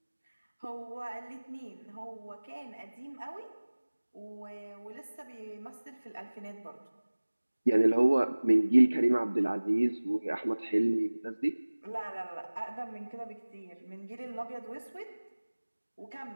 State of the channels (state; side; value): inverted; both; correlation -1.00